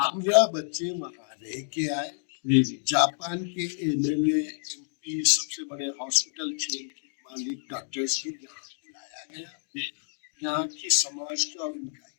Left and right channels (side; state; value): right; silent; digital silence